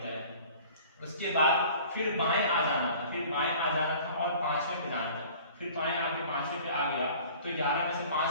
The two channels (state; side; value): inverted; both; correlation -0.47